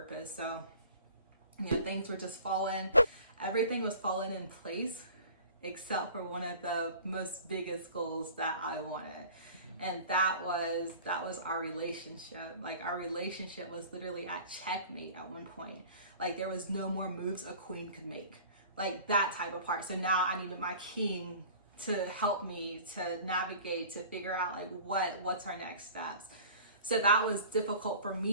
So, you know, things were just falling. Everything was falling in place except for one of the most biggest goals that I wanted. And that was our relationship. Like our relationship was literally at checkmate at one point. Like there was no more moves a queen could make. Like that type of part. So now I needed my king to help me to navigate, to figure out like what's our next steps. So that was difficult for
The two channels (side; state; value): both; inverted; correlation -0.44